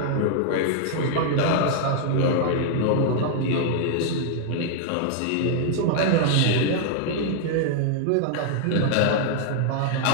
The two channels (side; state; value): both; different; correlation -0.01